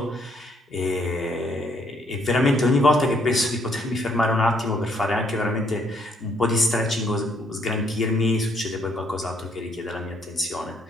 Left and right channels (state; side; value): normal; both; correlation 0.69